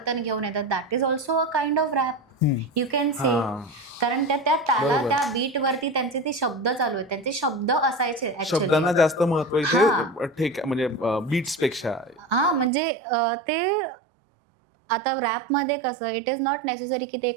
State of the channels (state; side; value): drops out; left; at 12.7 s